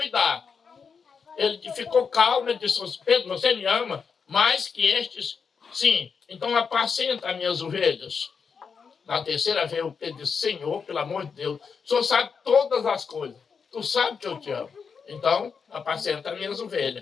Ele ficou calmo, ele disse, Pedro, você me ama mais que estes? Sim, então apacenta as minhas ovelhas. Na terceira vez, o Pedro disse, Senhor, pelo amor de Deus, o Senhor sabe todas as coisas. Tu sabe que eu te amo. Então, apacenta as minhas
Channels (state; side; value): quieter; right; 5.9 dB